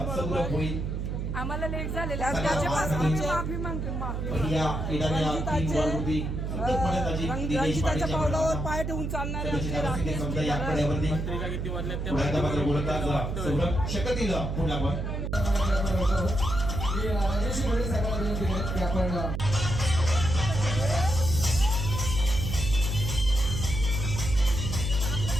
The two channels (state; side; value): noise; right; hum, 3 dB below the sound